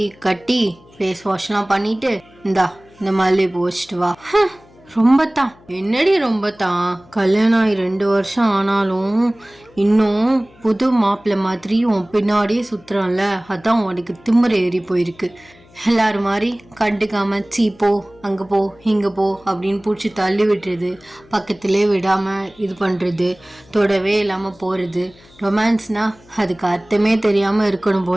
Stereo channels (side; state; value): left; noise; hum, 27 dB below the sound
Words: கட்டி ஃபேஸ் வாஷ்லாம் பண்ணிட்டு இந்தா இந்த மல்லிகைப்பூ வச்சுட்டு வா. ரொம்ப தான் என்னடி ரொம்ப தான்? கல்யாணம் ஆகி 2 வருஷம் ஆனாலும் இன்னும் புது மாப்பிள்ளை மாதிரி உன் பின்னாடியே சுத்துறான்ல, அதான் உனக்கு திமிர ஏறி போயிருக்கு. எல்லாரும் மாதிரி கண்டுக்காம சீ போ, அங்கே போ, இங்கே போ அப்படின்னு பிடிச்சி தள்ளி விட்டுறது, பக்கத்திலே விடாமல் இது பண்ணுறது, தொடவே இல்லாமல் போகிறது. ரொமான்ஸ்னா அதுக்கு அர்த்தமே தெரியாமல் இருக்கணும்